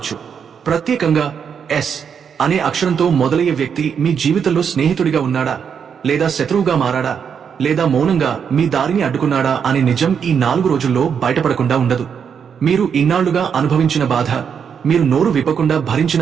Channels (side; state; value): left; quieter; 7.2 dB